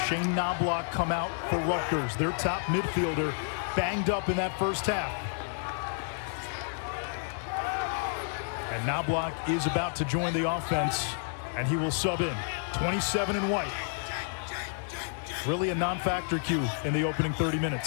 Shane Knobloch come out for Rutgers? Their top midfielder banged up in that first half. And Knobloch is about to join the offense, and he will sub in. 27 in white. Really a non-factor cue in the opening 30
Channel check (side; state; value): right; silent; 58 dB below the other